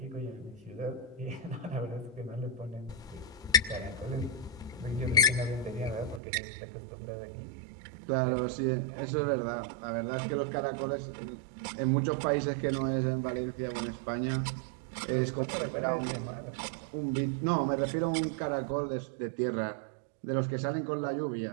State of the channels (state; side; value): drops out; left; at 6.2 s